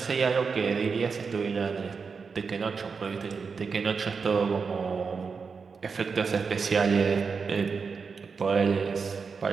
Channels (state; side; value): quieter; left; 5.3 dB